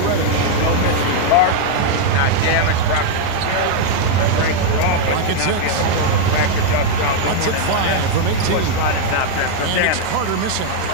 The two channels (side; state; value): both; different; correlation 0.00